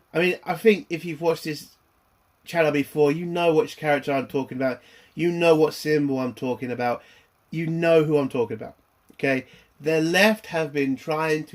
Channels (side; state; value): both; identical; correlation 1.00